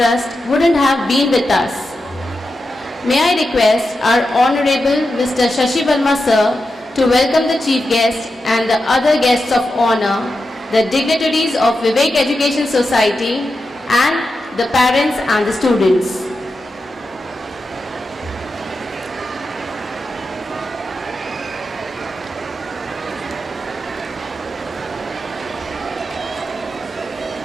wouldn't have been with us. May I request our Honorable Mr. Shashi Verma Sir to welcome the Chief Guest and the other guests of honor, the dignitaries of Vivek Education Society and the parents and the students.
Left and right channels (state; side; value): normal; both; correlation 0.89